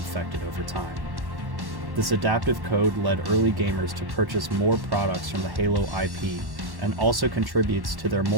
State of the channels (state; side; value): late; left; 1.1 ms